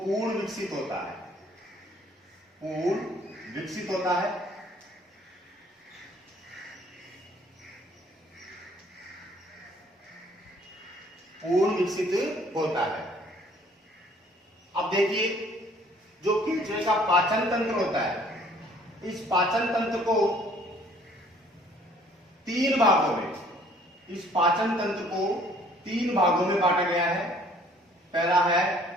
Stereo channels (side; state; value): both; normal; correlation 0.58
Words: विकसित होता है। पूर्ण विकसित होता है। पूर्ण विकसित होता है। अब देखिए, जो केचुए का पाचन तंत्र होता है, इस पाचन तंत्र को तीन भागों में, इस पाचन तंत्र को तीन भागों में बांटा गया है। पहला